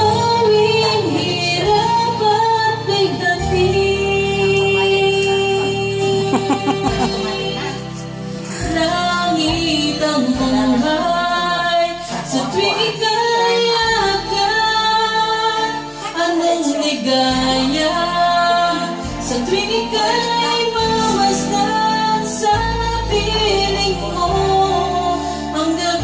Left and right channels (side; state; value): both; identical; correlation 1.00